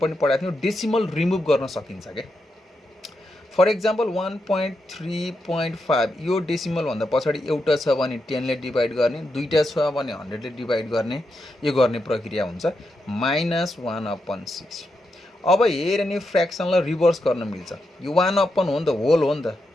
पनि पढाएको थियौँ डेसिमल रिमुभ गर्न सकिन्छ के फर एक्जाम्पल 1.3.5 यो डेसिमल भन्दा पछाडि एउटा छ भने 10 ले डिभाइड गर्ने दुईटा छ भने 100 ले डिभाइड गर्ने यो गर्ने प्रक्रिया हुन्छ माइनस 1/6 अब हेर नि फ्र्याक्सनलाई रिभर्स गर्न मिल्छ यो 1/1 हो नि त होल हो नि त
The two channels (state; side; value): normal; both; correlation 0.85